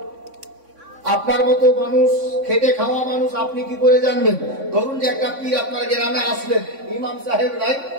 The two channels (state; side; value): late; left; 3.6 ms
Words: আপনার মতো মানুষ, খেটে খাওয়া মানুষ, আপনি কি করে জানবেন? ধরুন যে একটা পীর আপনার গ্রামে আসলেন, ইমাম সাহেব নাই,